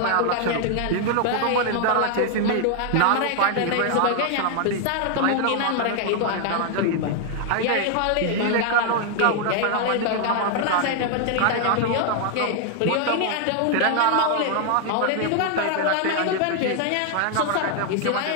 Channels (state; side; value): different; both; correlation 0.00